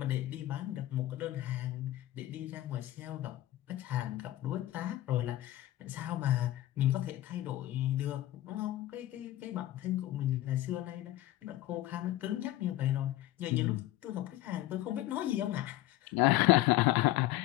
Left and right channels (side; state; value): right; quieter; 15.2 dB